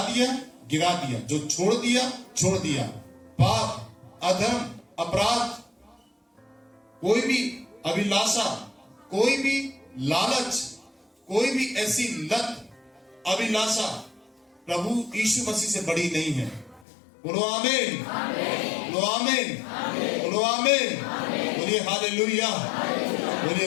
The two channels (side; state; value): right; drops out; at 16.9 s